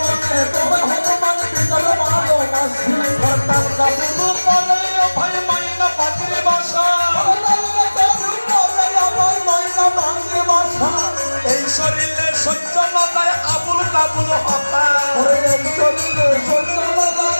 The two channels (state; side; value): inverted; both; correlation -1.00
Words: তোমায় হনুমান ভিতর ভালোবাসি তার কাবুল করে ভাই মাইনা পাখির বাসা এই শরীরে সহ্য না যায় আবুল কাবুল হতা